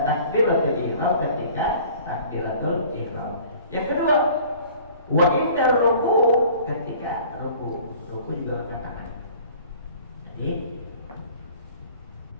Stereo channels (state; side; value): inverted; both; correlation -0.49